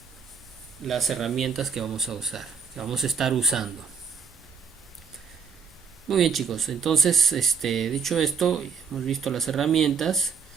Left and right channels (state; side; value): quieter; left; 6.0 dB